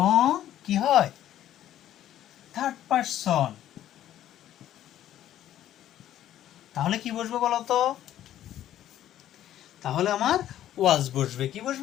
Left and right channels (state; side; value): quieter; right; 12.1 dB